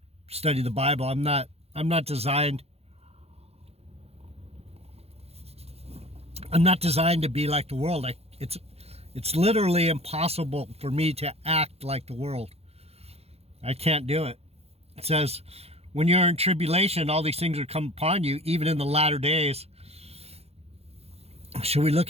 study the Bible. I'm not designed I'm not designed to be like the world. It's literally impossible for me to act like the world. I can't do it. It says, when you're in tribulation, all these things are come upon you, even in the latter days. Should we look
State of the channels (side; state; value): left; late; 0.29 ms